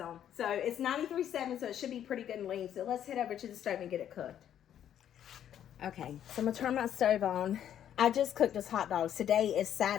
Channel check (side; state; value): right; quieter; 10.2 dB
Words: on. So it's 93.7, so it should be pretty good and lean. So let's head over to the stove and get it cooked. Okay, so I'm going to turn my stove on. I just cooked this hot dogs. Today is